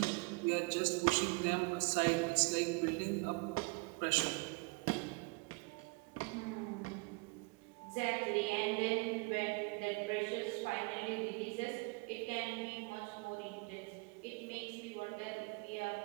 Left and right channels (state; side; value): quieter; left; 27.7 dB